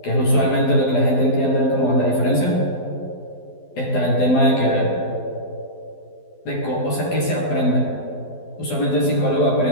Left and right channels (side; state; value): right; late; 12 ms